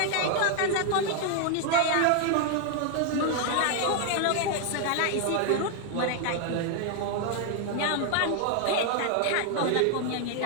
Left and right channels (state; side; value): different; both; correlation 0.00